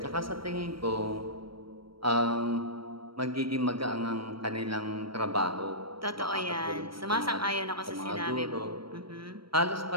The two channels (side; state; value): left; late; 0.74 ms